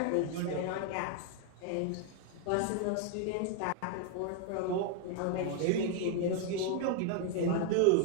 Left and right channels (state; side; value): different; both; correlation 0.01